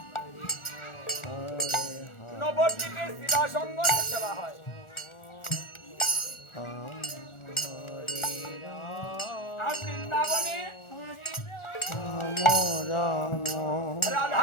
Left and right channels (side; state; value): right; late; 1.4 ms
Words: নবদ্বীপে শিবা সঙ্গমে সেবা হয়। আর বৃন্দাবনে